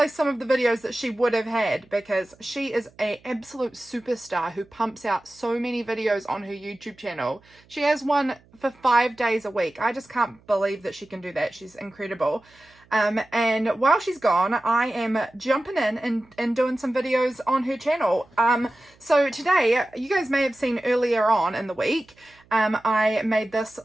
some of the videos that she would have had, because she is an absolute superstar who pumps out so many videos on her YouTube channel. She has one for 5 days a week. I just can't believe that she can do that. She's incredible. And while she's gone, I am jumping in and doing some videos on her channel. So today, you guys may have seen earlier on in the week, I made this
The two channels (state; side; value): noise; right; hum, 30 dB below the sound